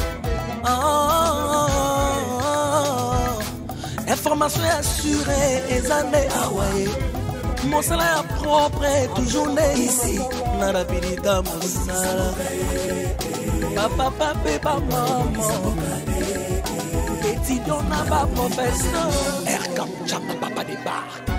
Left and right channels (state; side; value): identical; both; correlation 1.00